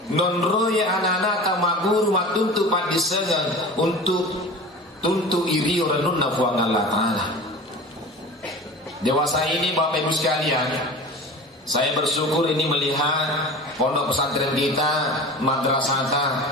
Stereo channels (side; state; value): both; normal; correlation 0.35